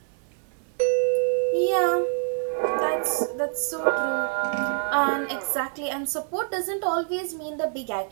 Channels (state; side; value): silent; left; 61 dB below the other